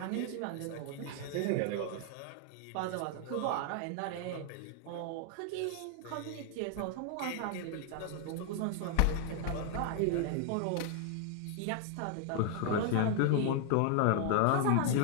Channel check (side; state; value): both; different; correlation 0.00